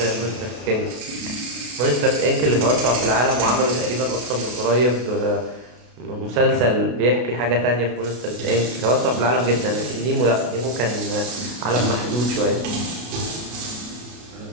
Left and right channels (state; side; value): late; left; 33 ms